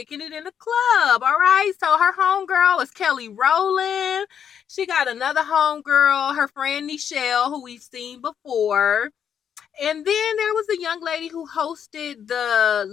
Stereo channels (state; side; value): quieter; right; 8.2 dB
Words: it in the club. All right. So her homegirl is Kelly Rowland. She got another homegirl, her friend Nichelle, who we've seen before. And then there was a young lady who hosted the